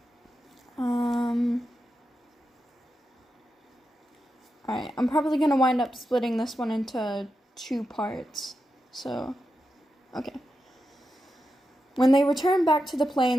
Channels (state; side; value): normal; both; correlation 0.88